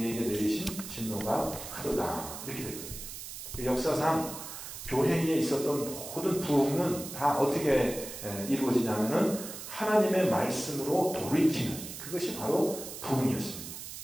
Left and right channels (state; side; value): noise; right; hiss, 10 dB below the sound